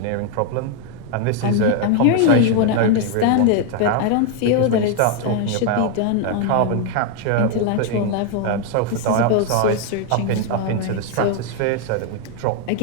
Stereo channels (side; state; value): both; different; correlation 0.00